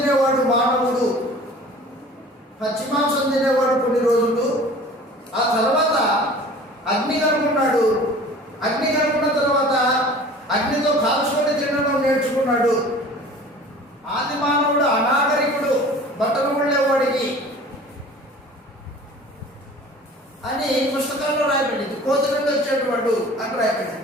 మానవుడు, పచ్చి మాంసం తినేవాడు కొన్ని రోజులు. ఆ తర్వాత అగ్ని కనుక్కున్నాడు. అగ్ని కనుక్కున్న తర్వాత అగ్నితో కాల్చుకొని తినడం నేర్చుకున్నాడు. ఆది మానవుడు అనాగరికుడు, బట్టలు ఉండేవాడికి అని పుస్తకాల్లో రాయబడింది. కోతి నుండి వచ్చేటవాడు అని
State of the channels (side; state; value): both; normal; correlation 0.44